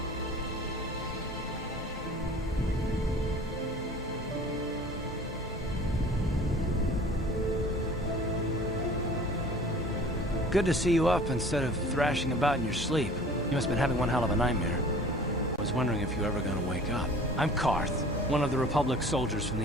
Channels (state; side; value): normal; both; correlation 0.46